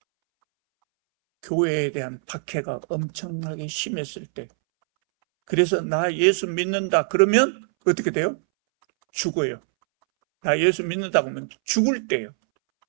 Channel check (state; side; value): silent; left; 63 dB below the other